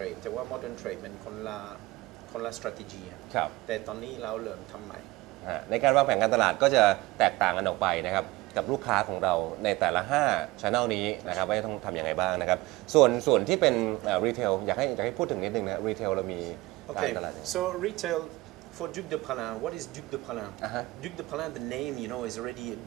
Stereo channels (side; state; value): left; quieter; 20.3 dB